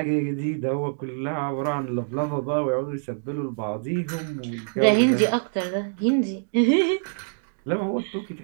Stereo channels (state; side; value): silent; left; digital silence